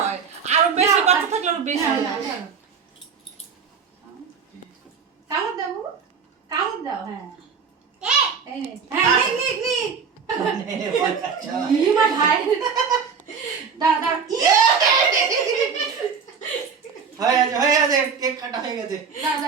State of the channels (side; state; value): left; quieter; 6.0 dB